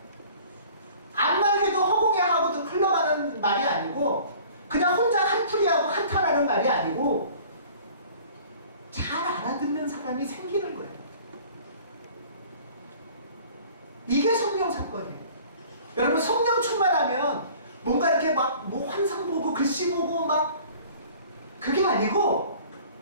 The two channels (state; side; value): inverted; both; correlation -0.48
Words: 암만 해도 허공에 하고도 흘러가는 말이 아니고 그냥 혼자 한풀이하고 한탄하는 말이 아니고 잘 알아듣는 사람이 생기는 거예요. 이게 성령 사건이에요. 여러분, 성령 충만하면 뭔가 이렇게 막 뭐 환상 보고 글씨 보고 막 그게 아니고